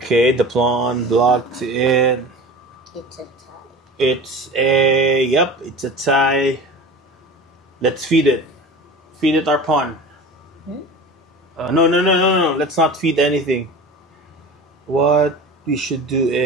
the pawn blocked in. it's a tie. It's a tie. Let's feed it. Feed it our pawn. No. Let's not feed anything. What we should do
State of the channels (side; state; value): both; normal; correlation 0.35